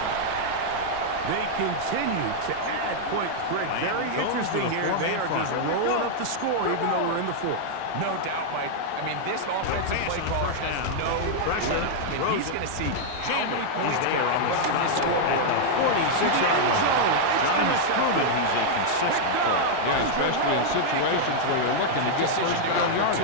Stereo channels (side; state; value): both; different; correlation -0.01